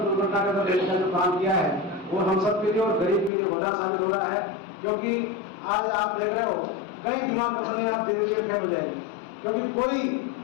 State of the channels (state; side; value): drops out; right; at 3.3 s